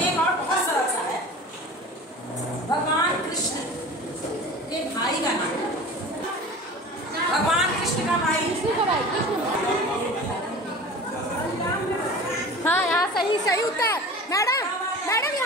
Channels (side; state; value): both; normal; correlation 0.38